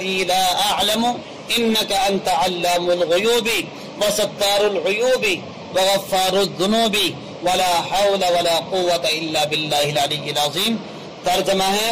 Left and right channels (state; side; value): identical; both; correlation 1.00